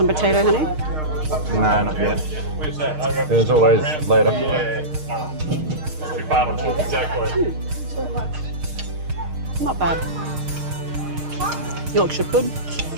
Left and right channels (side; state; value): left; late; 6.5 ms